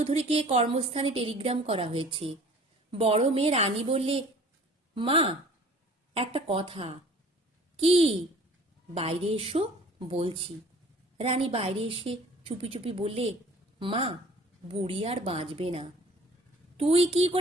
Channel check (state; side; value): normal; both; correlation 0.49